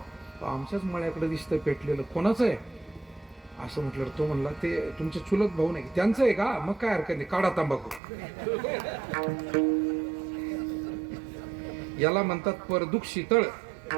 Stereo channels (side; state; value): left; drops out; at 8.0 s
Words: आमच्याच मळ्याकडे दिसतंय पेटलेलं, कोणाचं आहे असं म्हटलं. तो म्हणला ते तुमचे चुलत भाऊ नाही. त्यांचं आहे का? मग काय हरकत नाही, काढा तंबाखू. याला म्हणतात परदुःख शीतळ.